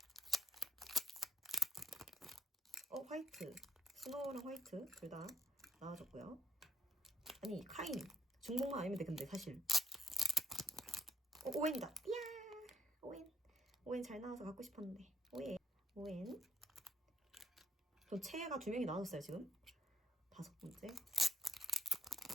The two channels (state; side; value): normal; both; correlation 0.69